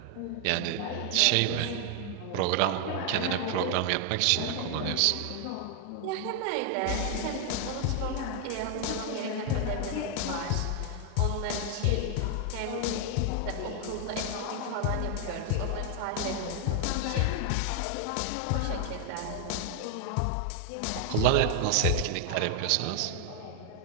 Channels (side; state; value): both; different; correlation 0.00